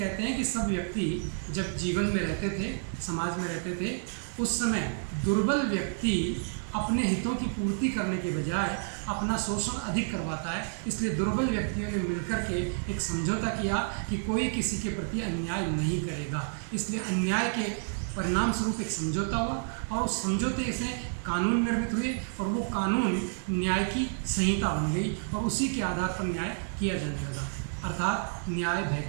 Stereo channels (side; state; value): left; silent; digital silence